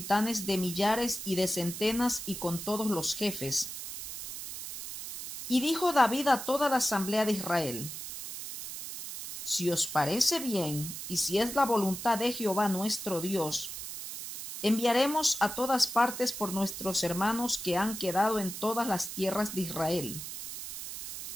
de millares y de centenas y con todos los jefes. Y dijo David a toda la asamblea de Israel: Si os parece bien, y si es la voluntad de Jehová nuestro Dios, enviaremos a todas partes por nuestros hermanos que han quedado en todas las tierras de Israel,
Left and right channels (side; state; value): right; noise; hiss, 8 dB below the sound